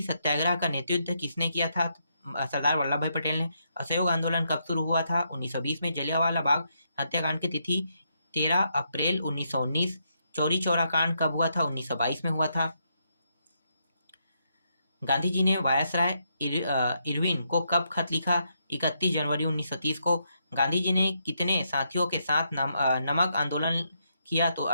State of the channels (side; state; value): both; inverted; correlation -0.78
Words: सत्याग्रह का नेतृत्व किसने किया था? सरदार वल्लभ भाई पटेल ने। असहयोग आंदोलन कब शुरू हुआ था? 1920 में। जलियांवाला बाग हत्याकांड की तिथि 13 अप्रैल 1919। चौरी चौरा कांड कब हुआ था? 1922 में हुआ था। गांधी जी ने वायसराय इरविन को कब खत लिखा? 31 जनवरी 1930 को। गांधी जी ने कितने साथियों के साथ नमक आंदोलन किया? तो